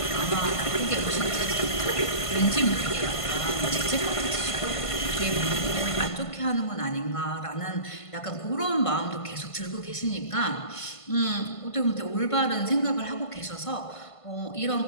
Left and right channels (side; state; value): right; late; 1.5 ms